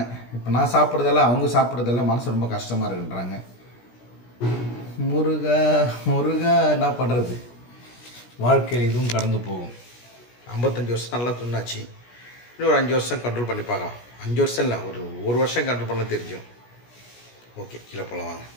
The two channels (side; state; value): right; late; 17 ms